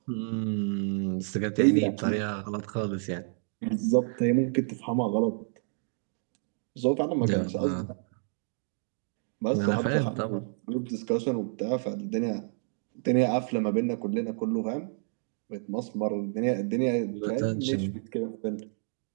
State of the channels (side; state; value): left; silent; digital silence